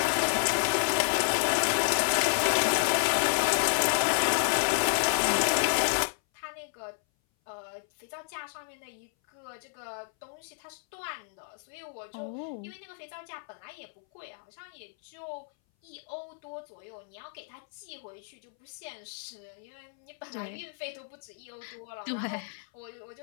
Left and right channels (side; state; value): right; silent; 57 dB below the other